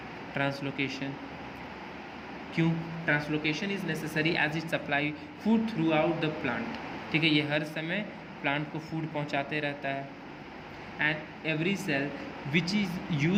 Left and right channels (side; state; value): both; identical; correlation 1.00